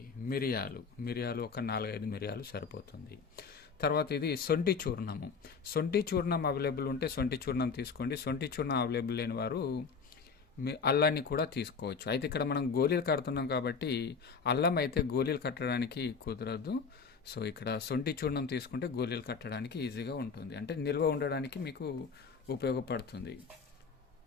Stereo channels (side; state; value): right; quieter; 5.4 dB